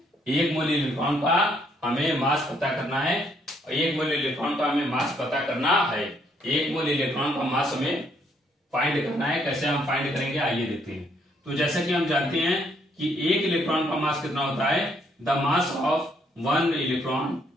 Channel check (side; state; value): both; normal; correlation 0.70